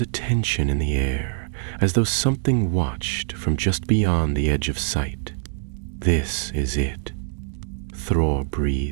a tension in the air, as though something watched from just beyond the edge of sight. "This is it," Thrór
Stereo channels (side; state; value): left; silent; digital silence